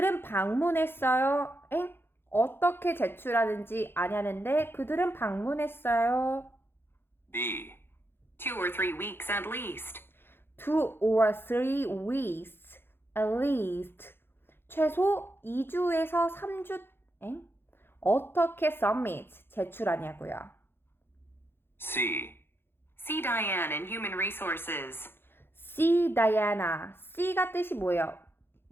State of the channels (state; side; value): late; right; 0.11 ms